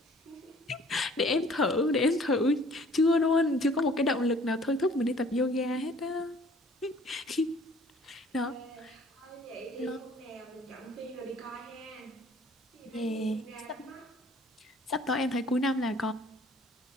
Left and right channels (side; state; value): both; normal; correlation 0.54